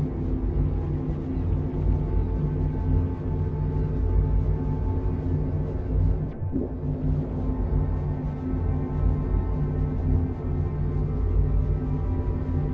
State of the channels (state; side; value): identical; both; correlation 1.00